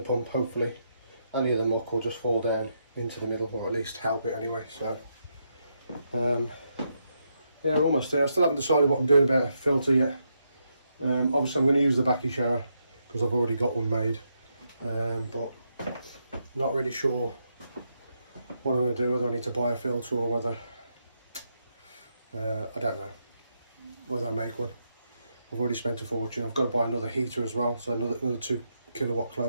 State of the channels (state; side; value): inverted; both; correlation -0.81